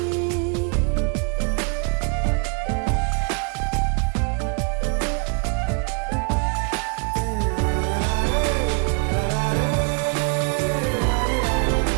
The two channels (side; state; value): left; quieter; 36.7 dB